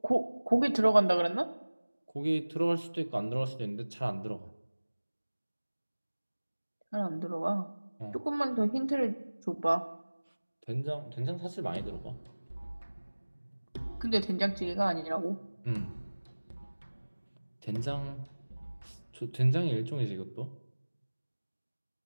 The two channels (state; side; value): inverted; both; correlation -1.00